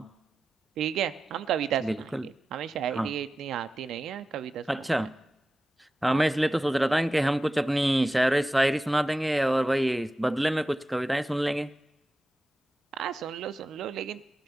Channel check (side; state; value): both; normal; correlation 0.93